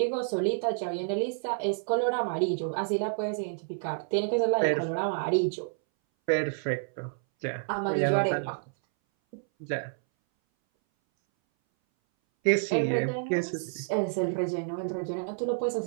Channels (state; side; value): silent; left; 59 dB below the other